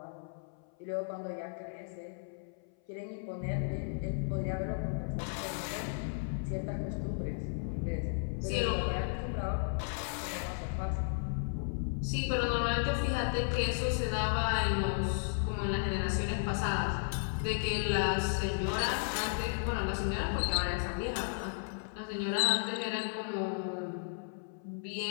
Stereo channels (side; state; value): right; silent; 55 dB below the other